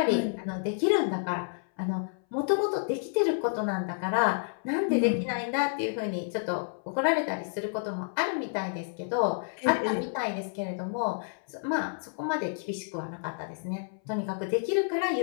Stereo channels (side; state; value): right; silent; 58 dB below the other